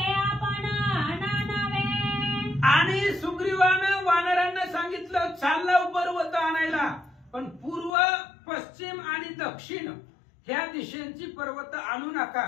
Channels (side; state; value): right; drops out; at 7.9 s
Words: आपण नानावे. आणि सुग्रीवानं वानरांना सांगितलं चाललं पर्वत आणायला, पण पूर्व पश्चिम आणि दक्षिण ह्या दिशेंची पर्वत आणू नका,